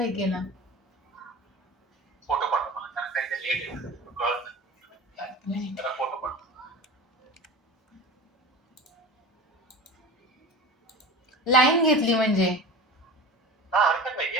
केला. फोटो पाठव मला कारण काही ते लेट आहे कळत नाही. त्याला फोटो पाठव. लाईन घेतली म्हणजे हा हरकत नाही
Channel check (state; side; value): normal; both; correlation 0.34